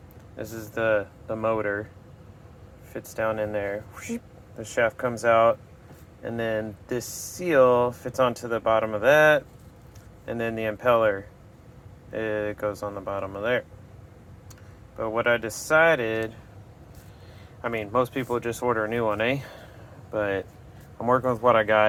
This is the motor. Fits down in there. The shaft comes out. And then this seal fits onto the bottom of that. And then the impeller, it goes on the bottom of there. But what I decided, I mean, most people just order a new one, eh? But I'm working with what I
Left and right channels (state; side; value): identical; both; correlation 1.00